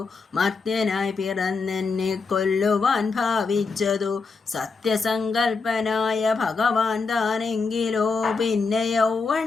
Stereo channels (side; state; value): right; quieter; 4.5 dB